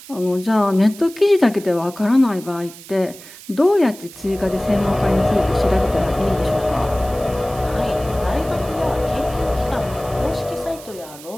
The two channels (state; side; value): noise; right; hiss, 18 dB below the sound